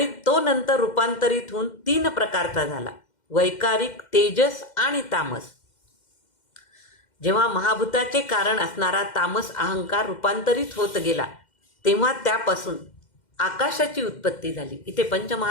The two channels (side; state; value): right; late; 2.1 ms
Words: तो नंतर रूपांतरित होऊन 3 प्रकारचा झाला: वैकारिक, तेजस आणि तामस. जेव्हा महाभूताचे कारण असणारा तामस अहंकार रूपांतरित होत गेला तेव्हा त्यापासून आकाशाची उत्पत्ती झाली. इथे